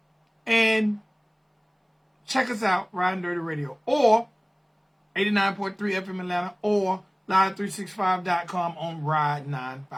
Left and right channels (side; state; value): both; identical; correlation 1.00